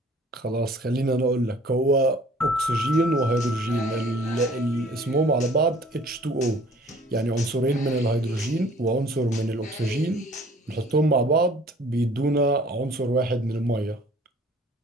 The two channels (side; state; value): both; normal; correlation 0.52